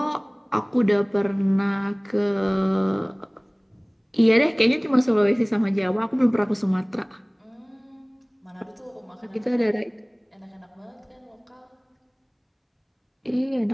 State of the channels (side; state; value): both; identical; correlation 1.00